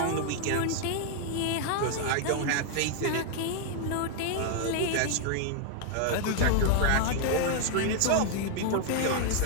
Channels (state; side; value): different; both; correlation 0.00